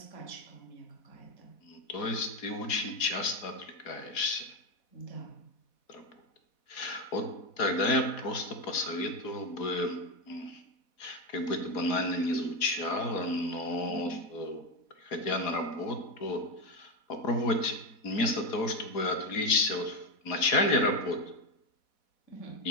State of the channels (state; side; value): late; right; 4.1 ms